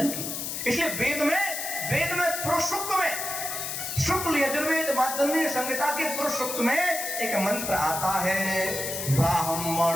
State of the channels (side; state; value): left; noise; hiss, 4 dB below the sound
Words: की। इसलिए वेद में पुरुष सूक्त में, शुक्ल यजुर्वेद माध्यमिक संहिता के पुरुष सूक्त में एक मंत्र आता है,